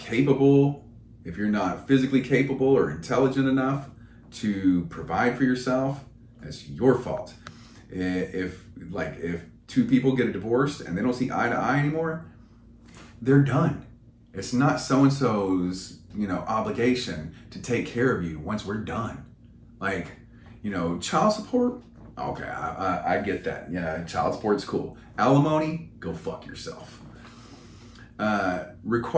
if you're not physically capable or intelligent enough to provide for yourself, that's your fault. If 2 people get a divorce and they don't see eye to eye anymore, they're done. It's not so-and-so's, you know, obligation to take care of you once we're done. Like, you know, child support, okay, I get that. Yeah, child support's cool. Alimony, go fuck yourself.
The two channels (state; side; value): identical; both; correlation 1.00